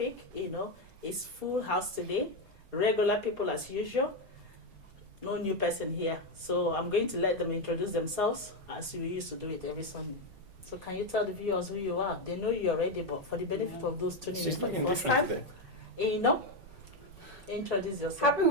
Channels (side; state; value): left; late; 5.2 ms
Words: It's full house today. Regular people as usual. No new person here. So I'm going to let them introduce themselves as we used to do it every Sunday. So can you tell the viewers who you are? They know you already, but for the benefit of those tuning in, She's looking for the first different time, introduce yourself. Happy